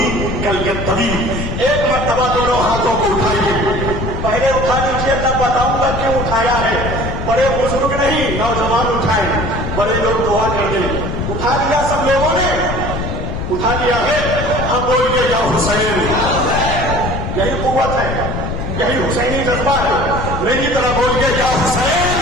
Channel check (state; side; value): noise; left; rumble, 4 dB below the sound